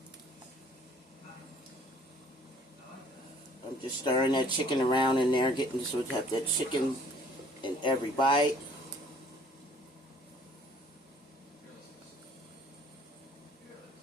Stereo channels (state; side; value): normal; both; correlation 0.57